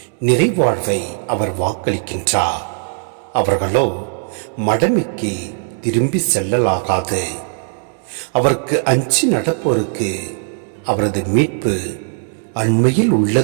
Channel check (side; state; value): left; silent; digital silence